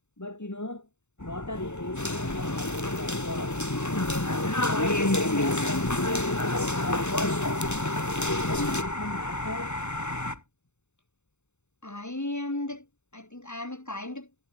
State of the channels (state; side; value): late; right; 0.83 ms